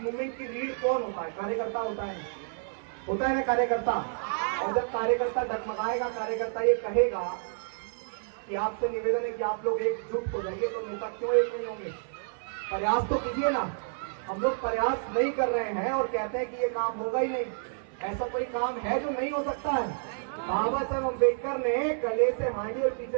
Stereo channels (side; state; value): left; silent; 58 dB below the other